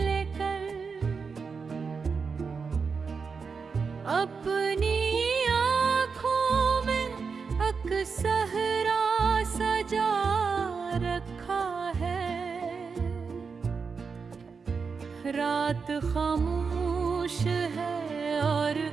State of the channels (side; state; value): left; quieter; 5.3 dB